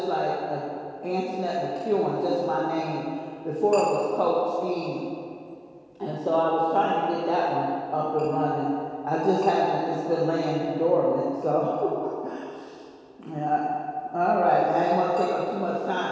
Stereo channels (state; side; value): identical; both; correlation 1.00